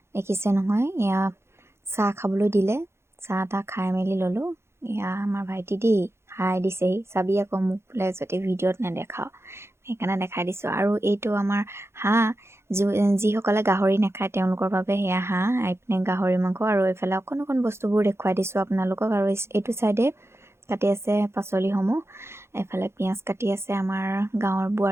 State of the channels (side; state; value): left; late; 0.12 ms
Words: দেখিছে নহয়, এয়া চাহ খাবলৈ দিলে, চাহ তাহ খাই মেলি ল'লোঁ। এয়া আমাৰ ভাইটি দেই হাই দিছেহি, চাবি আকৌ মোক বোলে যদি ভিডিঅ'ত নেদেখাওঁ, সেইকাৰণে দেখাই দিছোঁ। আৰু এইটো আমাৰ হাঁহ, যিসকলে গাহৰি নাখায় তেওঁলোকৰ বাবে সেয়া হাঁহ, এইপিনে গাহৰি মাংস, আৰু এইফালে অকণ অকণ বস্তুবোৰ দেখুৱাই দিছোঁ আপোনালোকক। আৰু এইটো চাইডে কাটি আছে পাচলিসমূহ, এইফালে পিঁয়াজ কাটি আছে আমাৰ গাঁৱৰ